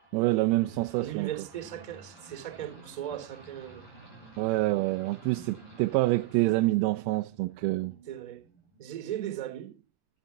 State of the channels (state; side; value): quieter; left; 18.0 dB